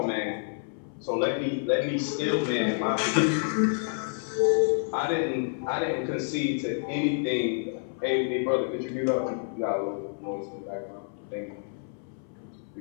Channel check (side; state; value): right; silent; 59 dB below the other